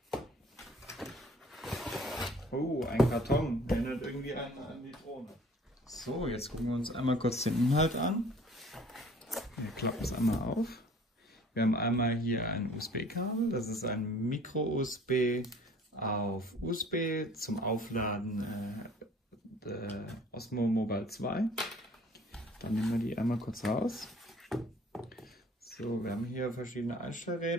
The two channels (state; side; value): normal; both; correlation 0.52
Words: Oh, ein Karton, erinnert irgendwie an die Drohne. So, jetzt gucken wir uns einmal kurz den Inhalt an. Wir klappen es einmal auf. Wir haben einmal hier ein USB-Kabel, das ist ein Micro-USB auf USB zum Aufladen der Osmo Mobile 2. Dann nehmen wir die einmal kurz raus. So, wir haben hier verschiedene